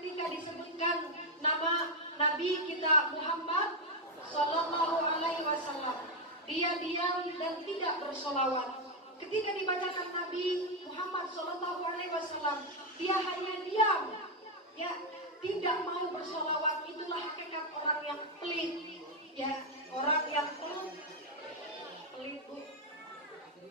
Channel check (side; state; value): both; normal; correlation 0.03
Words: disebutkan nama Nabi kita Muhammad Sallallahu Alaihi Wasallam, dia diam dan tidak bersolawat. Ketika dibacakan Nabi Muhammad Sallallahu Alaihi Wasallam, dia hanya diam, ya, tidak mau bersolawat. Itulah hakikat orang yang pelit, ya, orang yang pelit, Bu,